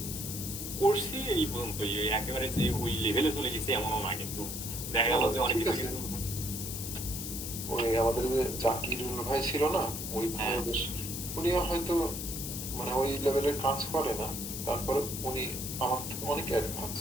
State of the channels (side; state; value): left; noise; hiss, 6 dB below the sound